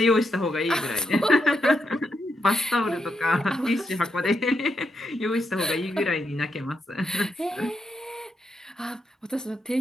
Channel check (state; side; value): normal; both; correlation 0.82